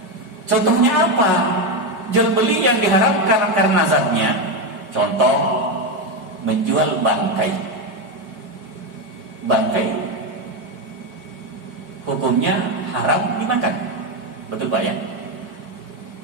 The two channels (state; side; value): late; left; 5.0 ms